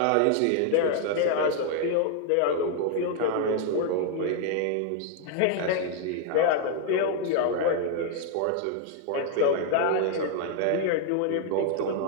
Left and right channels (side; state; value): both; different; correlation 0.00